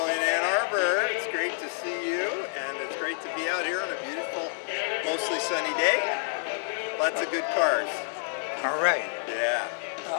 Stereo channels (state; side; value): silent; right; digital silence